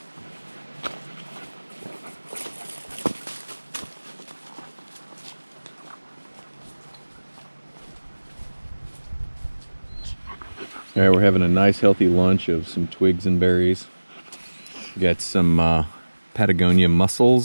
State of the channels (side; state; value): both; inverted; correlation -1.00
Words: All right, we're having a nice healthy lunch of some twigs and berries. We got some Patagonia